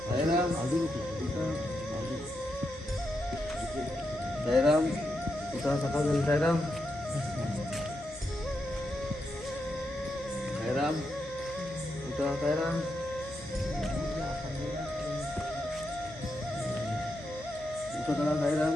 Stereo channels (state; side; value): normal; both; correlation 0.84